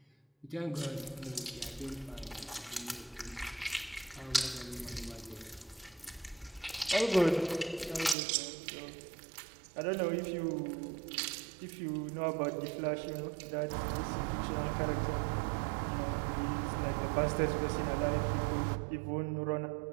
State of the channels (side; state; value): left; drops out; at 8.2 s